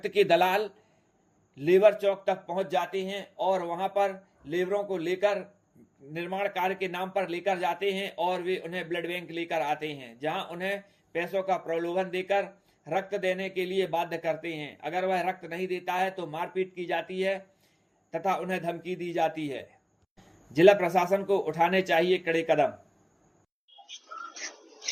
के दलाल लेबर चौक तक पहुंच जाते हैं और वहां पर लेबरों को लेकर निर्माण कार्य के नाम पर लेकर जाते हैं और वे उन्हें ब्लड बैंक लेकर आते हैं, जहां उन्हें पैसों का प्रलोभन देकर रक्त देने के लिए बाध्य करते हैं। अगर वह रक्त नहीं देता है तो मारपीट की जाती है तथा उन्हें धमकी दी जाती है। जिला प्रशासन को उठाने चाहिए कड़े कदम।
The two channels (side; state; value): both; identical; correlation 1.00